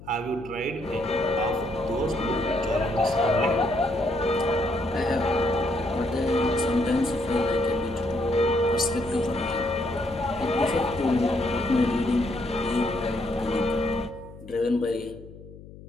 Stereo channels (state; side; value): noise; left; hum, 17 dB below the sound